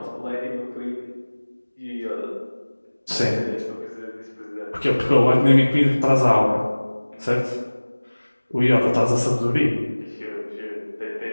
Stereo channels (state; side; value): inverted; both; correlation -1.00